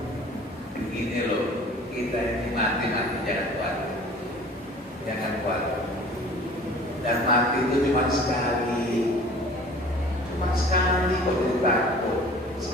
begini loh, kita ini mati jangan kuat. Dan mati itu cuma sekali. cuma sekali kok jadi takut.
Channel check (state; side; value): normal; both; correlation 0.47